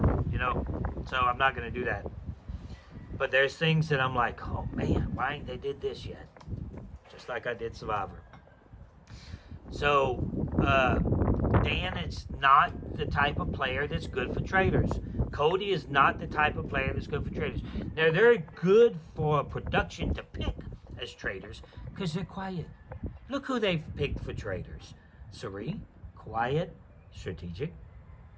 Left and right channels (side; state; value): both; identical; correlation 1.00